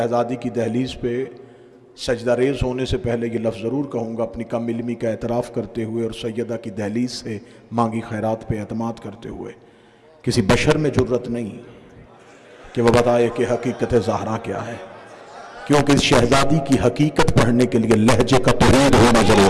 کی دہلیز پہ سجدہ ریز ہونے سے پہلے یہ لفظ ضرور کہوں گا، اپنی کم علمی کا اعتراف کرتے ہوئے اور سیدہ کی دہلیز سے مانگی خیرات پہ اعتماد کرتے ہوئے، کسی بشر میں جرت نہیں کہ وہ بتائے کہ حقیقت زہرا کیا ہے، کیونکہ اس شہزادی کی حقیقت پڑھنے کے لیے لہجے کا توحید ہونا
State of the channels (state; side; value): identical; both; correlation 1.00